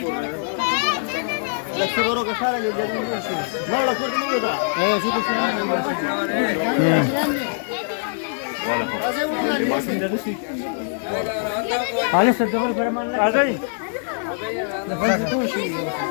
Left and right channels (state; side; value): silent; right; digital silence